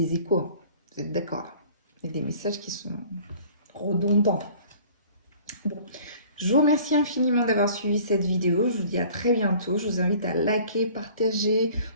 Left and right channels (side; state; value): both; inverted; correlation -0.50